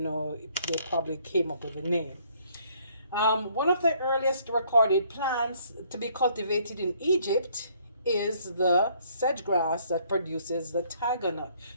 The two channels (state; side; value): inverted; both; correlation -0.64